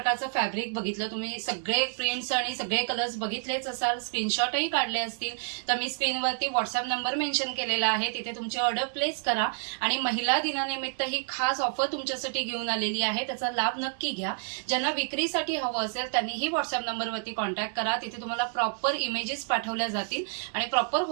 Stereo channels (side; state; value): left; silent; 59 dB below the other